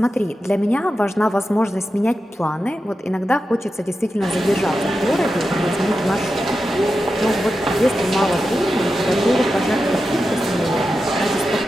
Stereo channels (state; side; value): normal; both; correlation 0.90